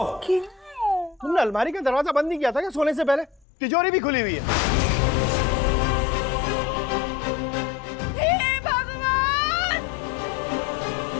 तुमने अलमारी का दरवाजा बंद नहीं किया था क्या सोने से पहले? तिजोरी भी खुली हुई है।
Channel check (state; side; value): drops out; right; at 3.5 s